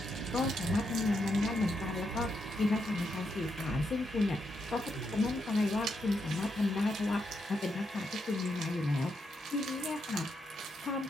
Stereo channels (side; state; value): both; normal; correlation 0.81